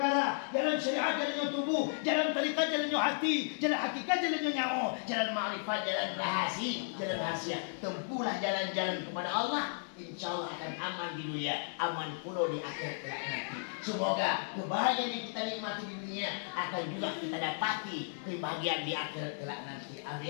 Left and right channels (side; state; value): right; silent; digital silence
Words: Jalan syariat jalannya tubuh, jalan tarikat jalannya hati, jalan hakikat jalannya nyawa, jalan ma'rifat jalan rahasia. Tempuhlah jalan-jalan kepada Allah. InsyaAllah akan aman di dunia, aman pula di akhirat kelak nanti. Semoga kebahagiaan yang kita nikmati di dunia akan juga kita dapati kebahagiaan di akhirat kelak nanti.